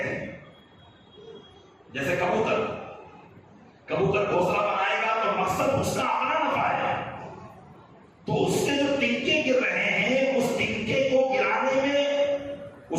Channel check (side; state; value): both; identical; correlation 1.00